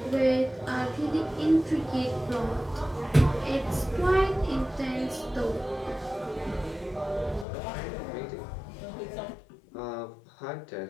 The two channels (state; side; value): drops out; right; at 7.5 s